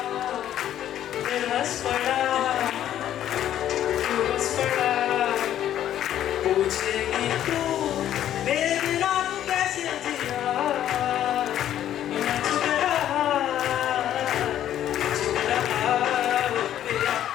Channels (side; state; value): right; quieter; 11.4 dB